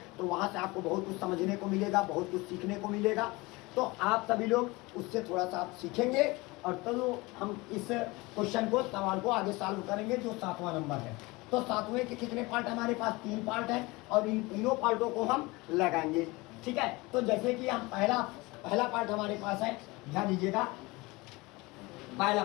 तो वहाँ से आपको बहुत कुछ समझने को मिलेगा, बहुत कुछ सीखने को मिलेगा। तो आप सभी लोग उससे थोड़ा सा आप सीखेंगे और तो हम इस क्वेश्चन को, सवाल को आगे सॉल्व करेंगे जो 7वां नंबर है। तो 7वें के कितने पार्ट हमारे पास? 3 पार्ट हैं और इन तीनों पार्टों को हम लगाएंगे। ठीक है, तो जैसे कि हम पहला पार्ट हमारे पास है, ध्यान दीजिएगा। पहला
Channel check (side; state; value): right; quieter; 23.1 dB